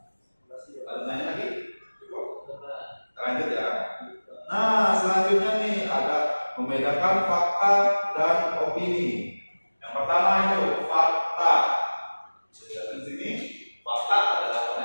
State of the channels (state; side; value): inverted; both; correlation -1.00